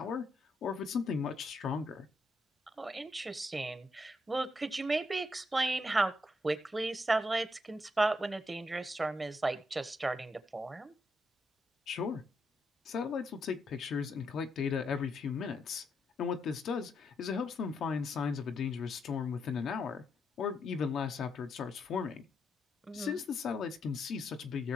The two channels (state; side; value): normal; both; correlation 0.80